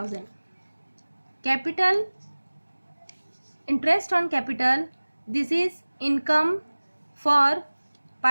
Capital, interest on capital, this is income for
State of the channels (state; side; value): inverted; both; correlation -1.00